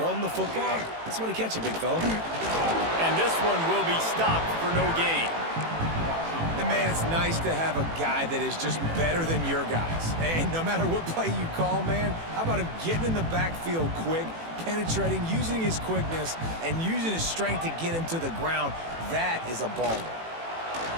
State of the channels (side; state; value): left; late; 18 ms